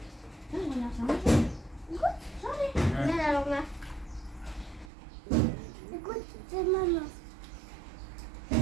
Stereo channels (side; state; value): left; drops out; at 4.9 s